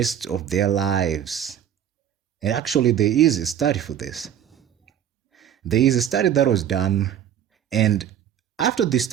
of their lives. And actually, there is a study for this. There is a study that was done, and after the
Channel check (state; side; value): quieter; left; 9.9 dB